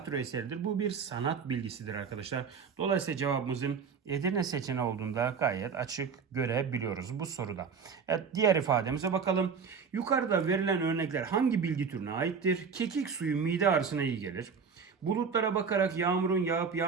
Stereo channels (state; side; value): quieter; left; 6.0 dB